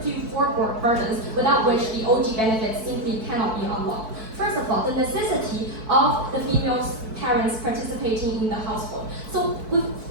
to you 4 burdens without which the OG benefits simply cannot be unlocked. First of all, the necessity of the female parents participating in the household. So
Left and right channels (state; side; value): late; left; 4.6 ms